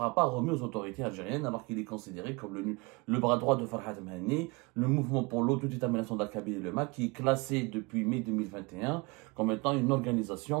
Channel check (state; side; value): quieter; left; 26.7 dB